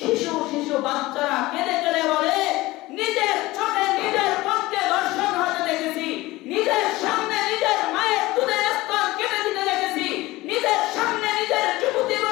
বাচ্চারা কেঁদে কেঁদে বলে নিজের চোখে নিজের পক্ষে দর্শন হতে দেখেছি, নিজের সামনে নিজের মায়ের দুধের স্তন কেটে দিতে দেখেছি, নিজের সামনে নিজের যুবতী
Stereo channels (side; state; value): right; quieter; 19.2 dB